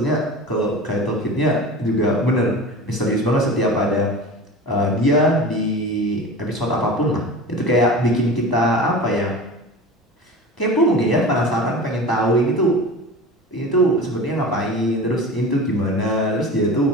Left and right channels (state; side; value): normal; both; correlation 0.34